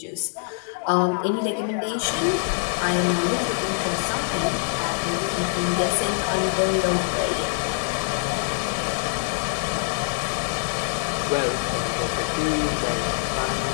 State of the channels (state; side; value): silent; right; digital silence